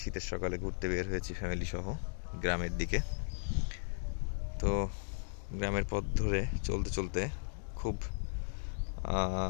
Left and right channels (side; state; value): right; silent; digital silence